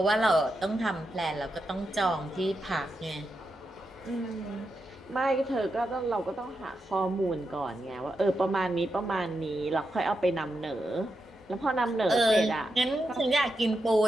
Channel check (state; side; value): normal; both; correlation 0.86